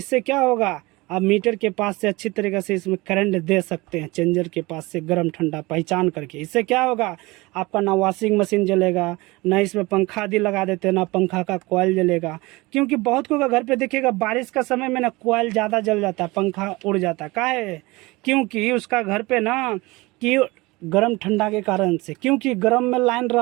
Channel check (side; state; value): left; quieter; 22.5 dB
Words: क्या होगा, आप मीटर के पास से अच्छी तरीके से इसमें करंट दे सकते हैं, चेंजर के पास से गर्म ठंडा पहचान करके। इससे क्या होगा, आपका ना वॉशिंग मशीन जलेगा, ना इसमें पंखा आदि लगा देते हैं, ना पंखा का कॉइल जलेगा। क्योंकि बहुत को घर पे देखिएगा बारिश का समय में ना कॉइल ज़्यादा जल जाता है, पंखा उड़ जाता है। काहे, क्योंकि उसका घर पे ना कि गर्म ठंडा के कारण से, क्योंकि गर्म में लाइन